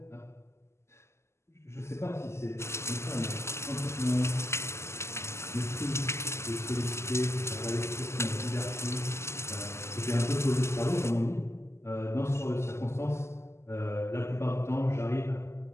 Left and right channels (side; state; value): right; late; 0.13 ms